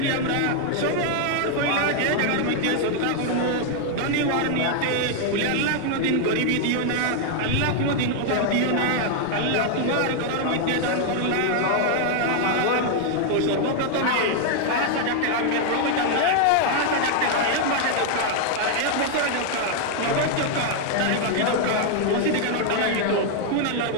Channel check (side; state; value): both; different; correlation 0.00